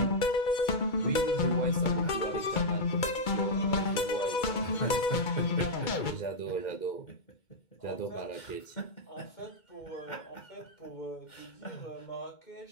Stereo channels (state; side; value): late; right; 2.3 ms